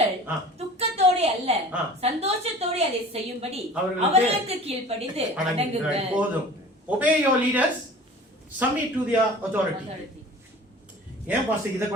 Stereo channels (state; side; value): normal; both; correlation 0.43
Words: துக்கத்தோடு அல்ல சந்தோஷத்தோடு அதை செய்யும்படி அவர்களுக்கு கீழ்ப்படிந்து அடங்குங்கள். போதும். Obey your leaders, submit to their authority. ஏன் பாஸ்டர் இதை